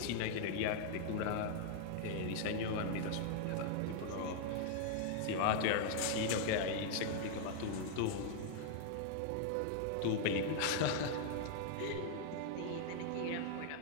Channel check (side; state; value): both; different; correlation 0.00